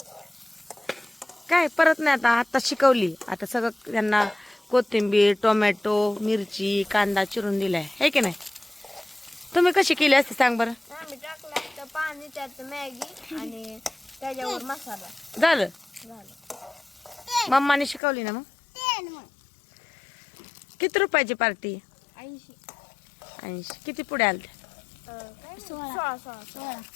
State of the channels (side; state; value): right; drops out; at 18.0 s